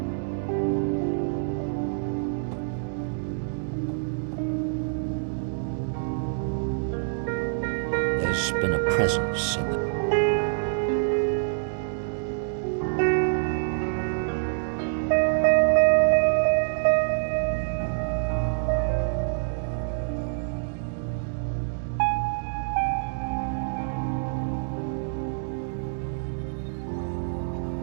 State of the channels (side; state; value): left; silent; digital silence